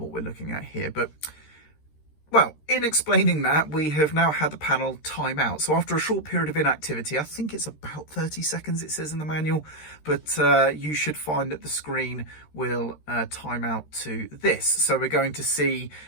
we're looking at here. But well, in explaining that, we have now had the panel time out. So after a short period of inactivity, I think it's about 30 seconds, it says in the manual, but you should find that the screen will time out to this. So we're going to see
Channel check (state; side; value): late; right; 13 ms